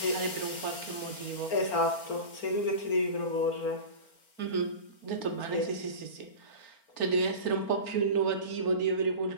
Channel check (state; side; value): late; right; 4.4 ms